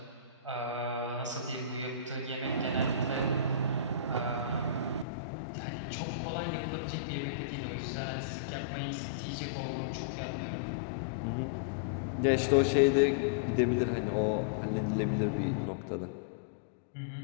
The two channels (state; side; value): drops out; right; at 5.1 s